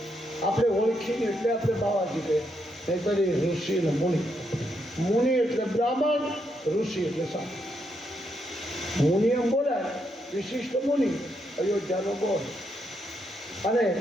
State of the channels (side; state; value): both; normal; correlation 0.79